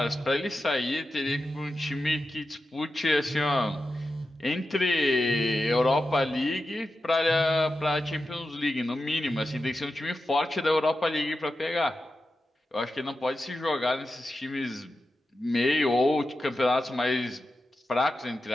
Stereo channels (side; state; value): both; normal; correlation 0.91